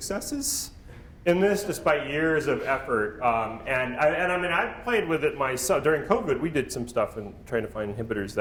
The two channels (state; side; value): identical; both; correlation 1.00